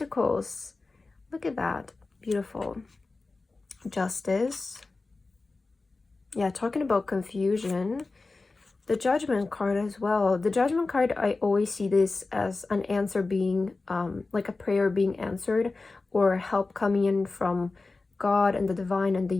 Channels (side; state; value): right; quieter; 3.6 dB